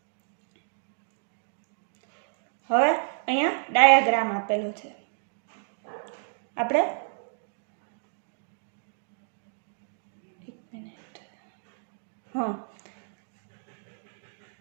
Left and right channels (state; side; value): silent; left; digital silence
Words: હવે અહીંયા ડાયાગ્રામ આપેલો છે. આપણે